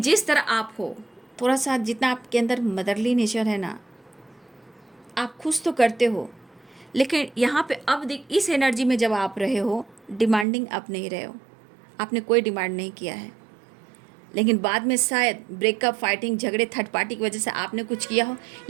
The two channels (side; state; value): left; drops out; at 10.5 s